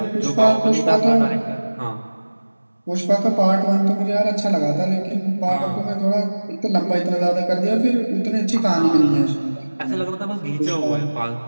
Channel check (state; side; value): inverted; both; correlation -1.00